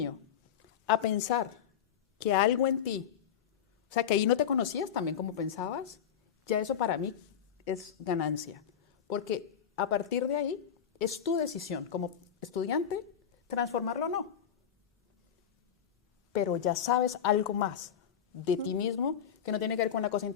a pensar que algo en ti, o sea, que ahí no te conocías también como pensabas, ya eso para mí es ganancia. Porque a partir de ahí es tu decisión como estudiante transformarlo o no. Pero ya sabes algo más de ti mismo que no tiene que ver con una cosa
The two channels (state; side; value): quieter; right; 8.5 dB